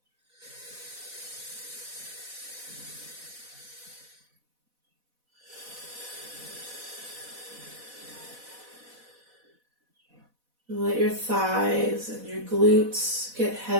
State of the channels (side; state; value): left; late; 4.1 ms